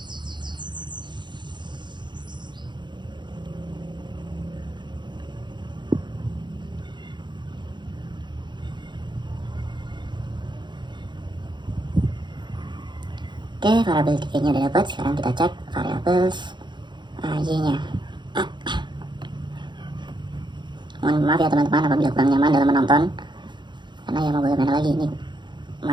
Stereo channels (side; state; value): left; late; 0.22 ms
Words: Oke, variabel 3-nya udah dapat. Sekarang kita cek variabel Y-nya. Mohon maaf ya teman-teman apabila kurang nyaman dalam menonton, karena ya mau bagaimana lagi, ini